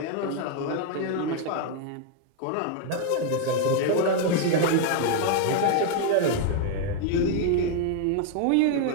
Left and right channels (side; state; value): both; different; correlation 0.00